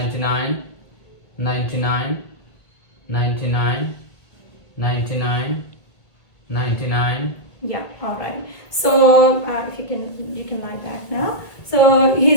99, 99, 99, 99. Yeah, alright. So if you can lie back now. So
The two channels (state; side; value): late; right; 1.8 ms